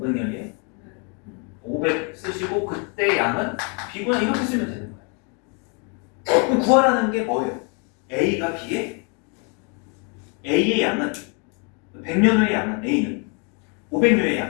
500 쓰시고 그때 양은 B구나 이렇게 쓰면 되는 거예요. 그럼 구하라는 게 뭐예요? A가 B에 A의 양은 100년 후의 양은 A는 500년의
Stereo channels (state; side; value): quieter; right; 36.2 dB